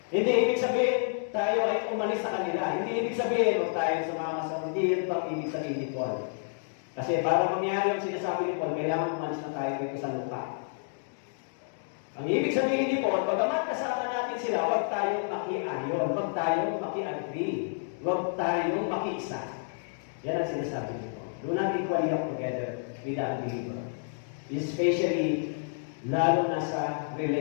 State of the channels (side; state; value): right; silent; digital silence